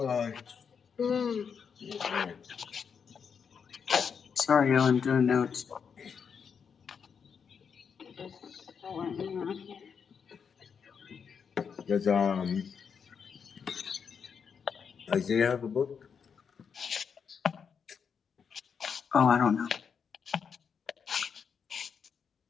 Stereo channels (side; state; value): right; quieter; 6.6 dB